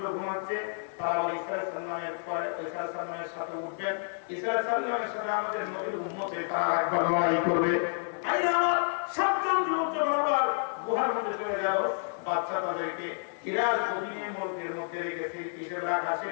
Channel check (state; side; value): silent; right; 58 dB below the other